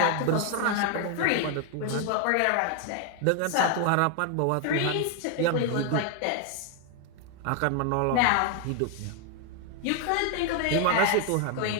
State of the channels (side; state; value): both; different; correlation 0.00